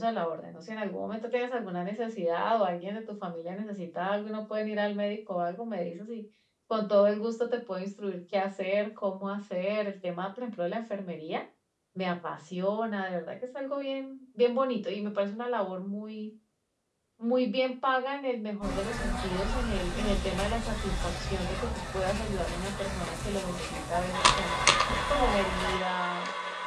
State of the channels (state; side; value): identical; both; correlation 1.00